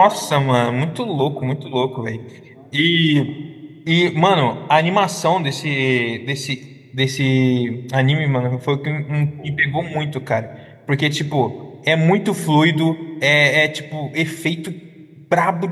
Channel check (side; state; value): both; identical; correlation 1.00